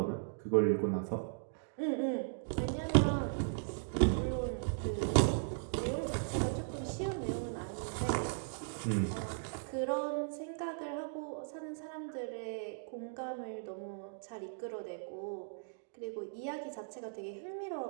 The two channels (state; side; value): silent; left; digital silence